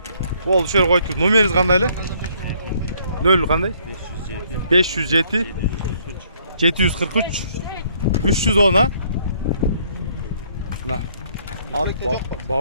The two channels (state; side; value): inverted; both; correlation -0.65